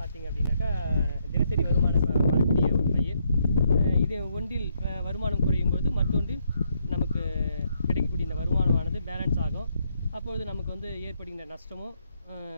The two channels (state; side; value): inverted; both; correlation -0.74